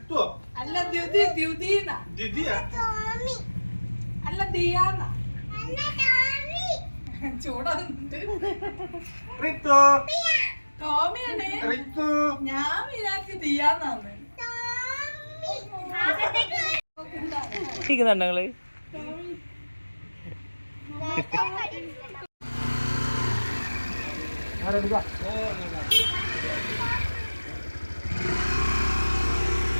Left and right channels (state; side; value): inverted; both; correlation -1.00